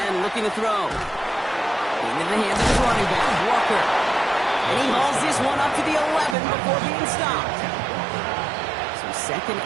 looking to throw. Into the hands of his running back, Walker. And he hauls this one up to the 11 before being stopped. So second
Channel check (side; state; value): left; drops out; at 6.4 s